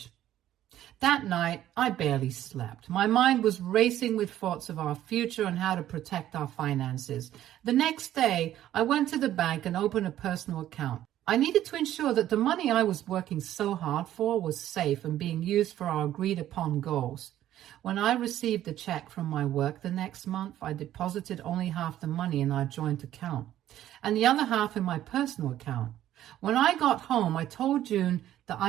That night, I barely slept. My mind was racing with thoughts of our future and how to protect our finances. The next day, I went to the bank and opened a personal account. I needed to ensure that the money I was working so hard for was safe and being used for our agreed upon goals. When I received the check from my work the next month, I deposited only half the money in our joint account and the other half in my personal account. When I got home, I told June that I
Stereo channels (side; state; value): left; quieter; 12.5 dB